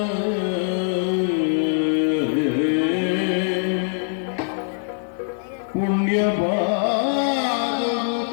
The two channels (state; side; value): silent; right; 56 dB below the other